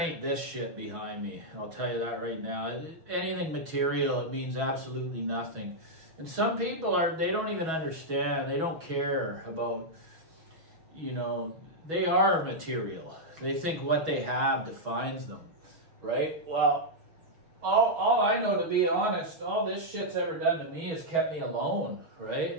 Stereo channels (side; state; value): left; late; 6.2 ms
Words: this shit behind me. I'll tell you that right now. Anything material, it means absolutely nothing. And some people they don't even understand. They don't care about, you know, they are material. They think what they have defines them, right? Well, all I know, to be honest, all this shit's ever done to me has kept me alone,